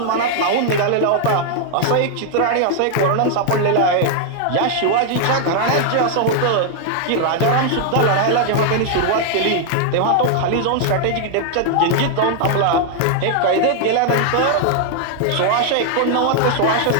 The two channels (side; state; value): both; different; correlation 0.00